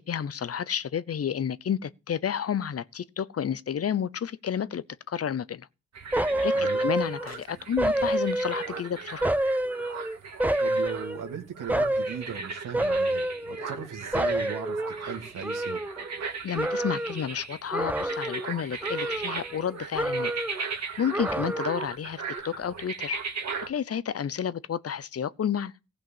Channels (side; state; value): both; normal; correlation 0.49